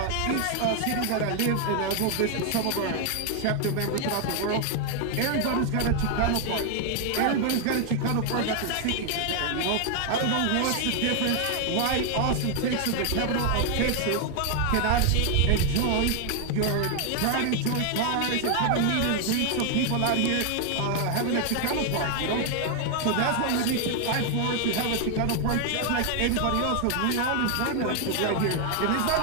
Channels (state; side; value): different; both; correlation 0.01